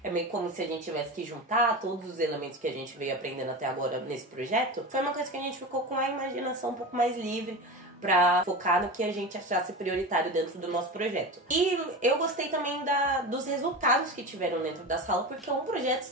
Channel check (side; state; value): both; normal; correlation 0.26